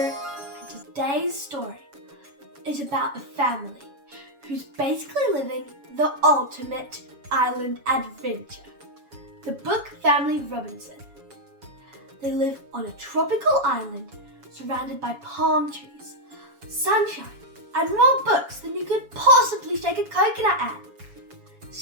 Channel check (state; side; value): late; left; 7.2 ms